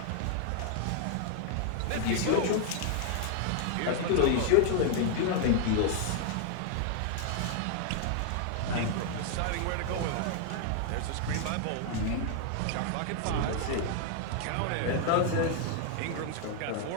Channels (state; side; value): different; both; correlation -0.01